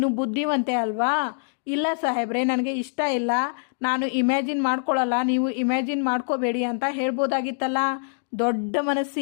ಬುದ್ಧಿವಂತೆ ಅಲ್ವಾ? ಇಲ್ಲ ಸಾಹೇಬ್ರೆ, ನನಗೆ ಇಷ್ಟ ಇಲ್ಲ, ನಾನು ಇಮ್ಯಾಜಿನ್ ಮಾಡ್ಕೊಳ್ಳಲ್ಲ, ನೀವು ಇಮ್ಯಾಜಿನ್ ಮಾಡ್ಕೋಬೇಡಿ ಅಂತ ಹೇಳ್ಬೋದಾಗಿತ್ತಲ್ಲ. ದೊಡ್ಡ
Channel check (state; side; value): silent; right; digital silence